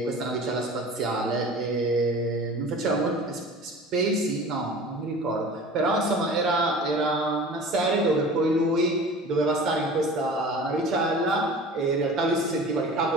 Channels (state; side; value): normal; both; correlation 0.40